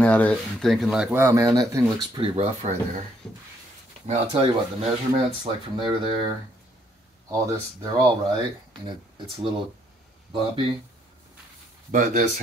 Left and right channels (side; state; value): both; normal; correlation 0.70